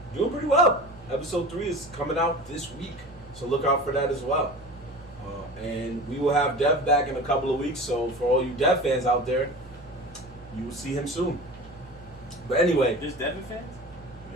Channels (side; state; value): both; normal; correlation 0.35